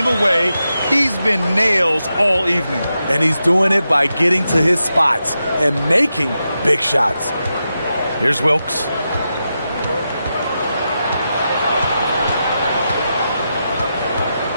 away, he's been nails all evening. And he's doing it by getting to his spots and making big shots. Here's Wilkes.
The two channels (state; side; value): inverted; both; correlation -0.88